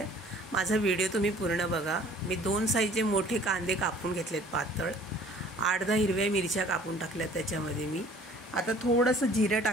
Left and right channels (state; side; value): normal; both; correlation 0.53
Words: माझा व्हिडिओ तुम्ही पूर्ण बघा। मी 2 साईजचे मोठे कांदे कापून घेतलेत पातळ, 8-10 हिरव्या मिरच्या कापून टाकल्यात त्याच्यामध्ये मी। आता थोडंसं जिरं